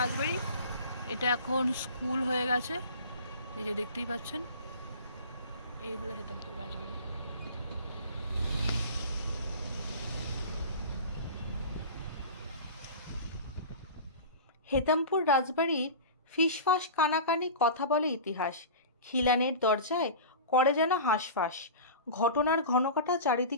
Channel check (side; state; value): both; inverted; correlation -0.35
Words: রাজবাড়ি। এটা এখন স্কুল হয়ে গেছে, এই যে দেখতেই পাচ্ছেন। এই হলো হেতমপুর রাজবাড়ি। হেতমপুর রাজবাড়ির ফিসফাস কানাকানি কথা বলে ইতিহাস। খিলানের দরজায় করে যেন হাঁসফাঁস, ঘটনার ঘনকাটা